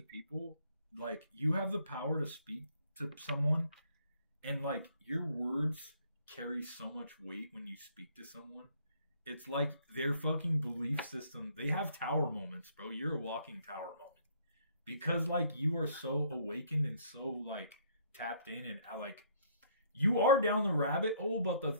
Like, you have the power to speak to someone, and like your words carry so much weight when you speak to someone. It's like their fucking belief system. They have tower moments, bro. You're a walking tower moment. Because like you are so awakened and so like tapped in and like you are down the rabbit hole, but the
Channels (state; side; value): inverted; both; correlation -0.64